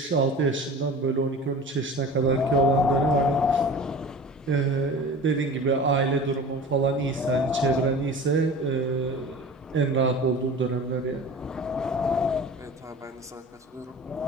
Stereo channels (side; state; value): both; normal; correlation 0.38